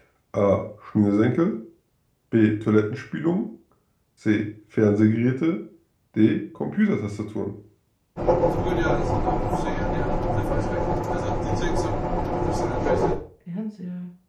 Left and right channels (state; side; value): identical; both; correlation 1.00